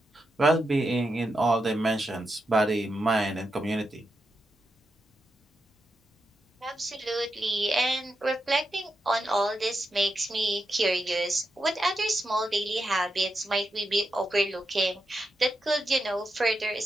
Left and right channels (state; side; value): normal; both; correlation 0.86